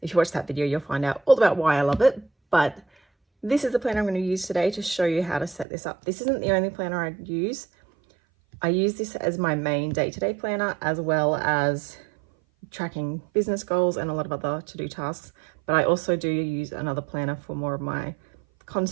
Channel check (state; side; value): drops out; left; at 5.7 s